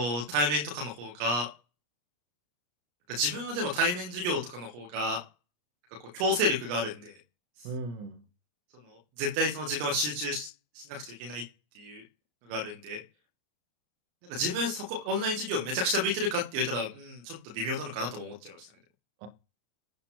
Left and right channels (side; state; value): left; late; 33 ms